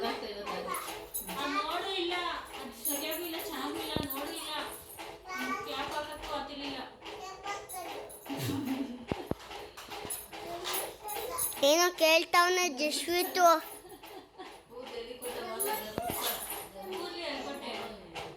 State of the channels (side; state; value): both; identical; correlation 1.00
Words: ಇರೋದು ಅದು. ನೋಡು ಇಲ್ಲ, ಅದು ಸರಿಯಾಗೂ ಇಲ್ಲ, ಚೆನ್ನಾಗೂ ಇಲ್ಲ, ನೋಡು ಇಲ್ಲ, ಕ್ಯಾಪ್ ಹಾಕಕ್ಕೂ ಆಗ್ತಿರ್ಲಿಲ್ಲ. ಏನೋ ಕೇಳ್ತಾವನೆ ಜಸ್ವಿತು. ಕೂರ್ಲಿ ಅನ್ಕೊಟ್ಟೆ.